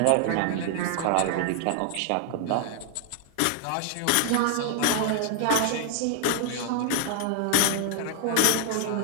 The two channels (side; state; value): both; different; correlation 0.00